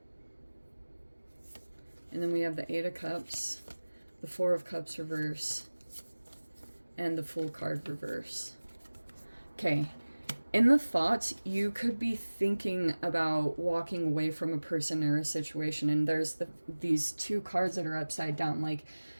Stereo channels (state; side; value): inverted; both; correlation -1.00